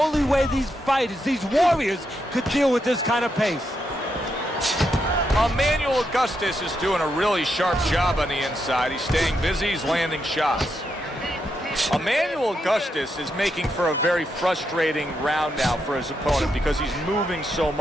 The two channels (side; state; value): both; normal; correlation 0.82